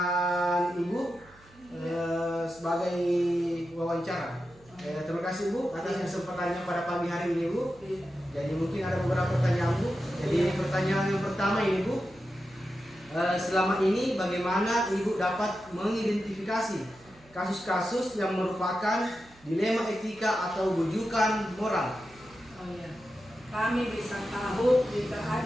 Ibu sebagai wawancara. Terima kasih Bu atas kesempatannya pada pagi hari ini Bu. Jadi mungkin ada beberapa pertanyaan Bu. Jadi pertanyaan yang pertama ini Bu, selama ini bagaimana Ibu dapat mengidentifikasi kasus-kasus yang merupakan dilema etika atau rujukan moral? Oh ya, kami bisa tahu jika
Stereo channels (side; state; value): right; noise; hum, 27 dB below the sound